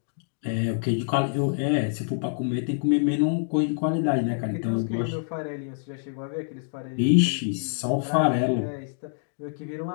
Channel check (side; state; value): right; silent; digital silence